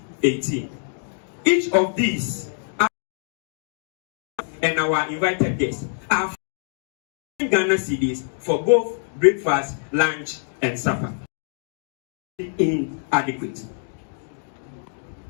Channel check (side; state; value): right; silent; 62 dB below the other